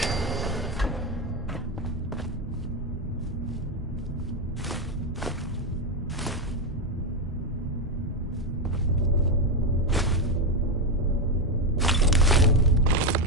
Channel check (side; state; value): both; normal; correlation 0.09